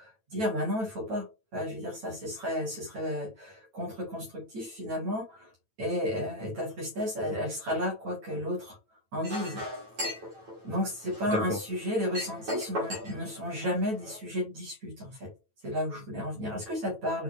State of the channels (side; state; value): left; late; 9.1 ms